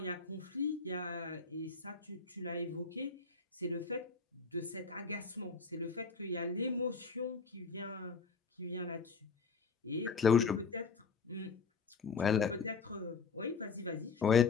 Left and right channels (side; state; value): right; quieter; 5.0 dB